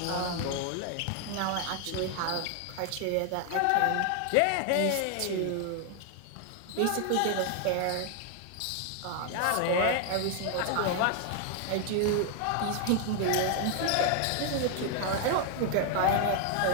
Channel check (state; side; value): different; both; correlation 0.00